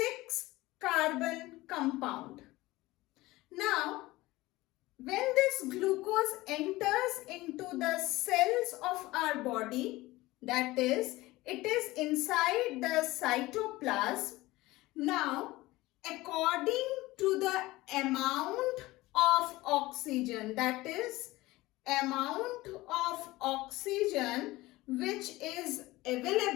compound. Now, when this glucose enters into the cells of our body, that is, it is inside the cytoplasm. Now, according to the amount of oxygen, that is, amount of oxygen which is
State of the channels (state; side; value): quieter; right; 19.1 dB